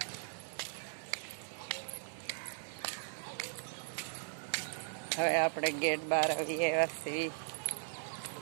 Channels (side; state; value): left; silent; digital silence